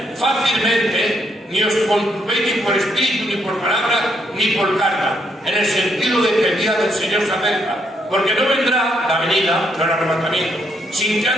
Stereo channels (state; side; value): normal; both; correlation 0.75